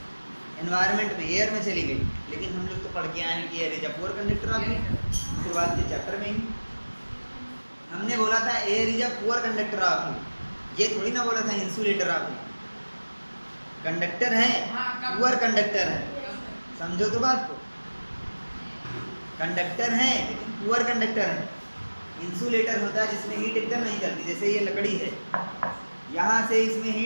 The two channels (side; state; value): both; inverted; correlation -1.00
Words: एनवायरनमेंट में, एयर में चली गई। लेकिन हम लोग तो पढ़ के आए हैं कि air is a poor conductor of heat. शुरुआत के चैप्टर में ही हमने बोला था air is a poor conductor of heat, ये थोड़ी ना बोला था इंसुलेटर ऑफ हीट। कंडक्टर है, पुअर कंडक्टर है, समझो तो बात को। कंडक्टर है लेकिन पुअर कंडक्टर है। इंसुलेटर होता है जिसमें हीट एकदम नहीं चलती, जैसे ये लकड़ी है, यहाँ से इसमें